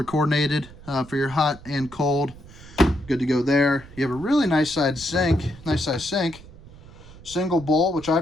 coordinated for your hot and cold. Good to go there. You have a really nice size sink. Single bowl, which I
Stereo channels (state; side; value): noise; right; rumble, 19 dB below the sound